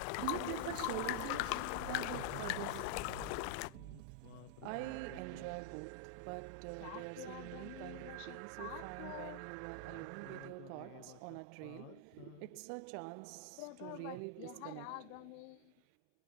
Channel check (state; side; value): different; both; correlation -0.01